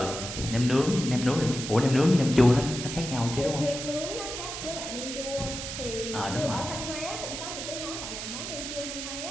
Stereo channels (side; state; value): right; noise; hiss, 6 dB below the sound